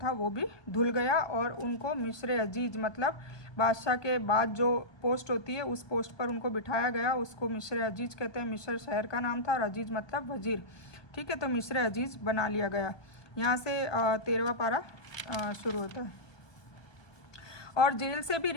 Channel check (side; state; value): right; late; 1.3 ms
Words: वो भी धुल गया और उनको मिस्र अजीज मतलब बादशाह के बाद जो पोस्ट होती है उस पोस्ट पर उनको बिठाया गया। उसको मिस्र अजीज कहते हैं। मिस्र शहर का नाम था और अजीज मतलब वजीर, ठीक है। तो मिस्र अजीज बना लिया गया। यहाँ से 13वां पारा शुरू होता है। और जेल से भी